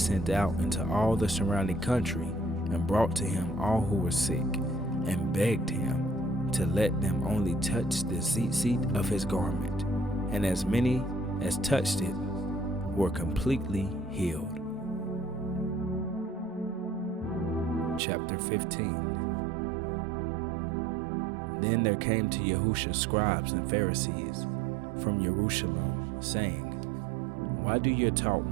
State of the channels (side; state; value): left; drops out; at 18.0 s